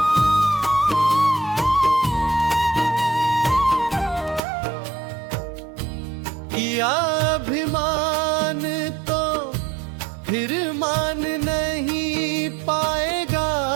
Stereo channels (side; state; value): left; drops out; at 4.4 s